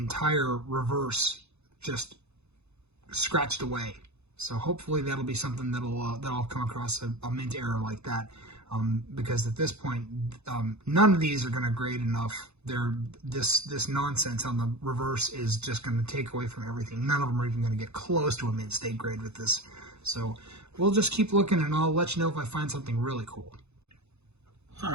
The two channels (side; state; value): left; late; 0.81 ms